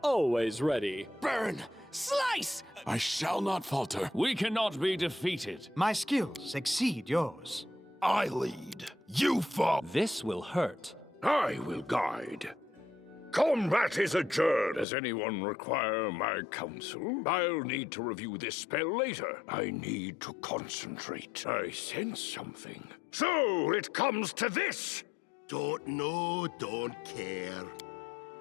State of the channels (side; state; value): right; drops out; at 14.9 s